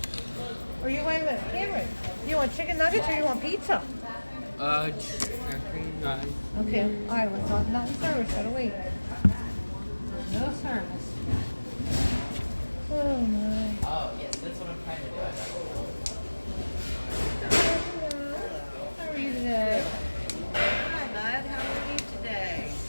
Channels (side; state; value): both; inverted; correlation -1.00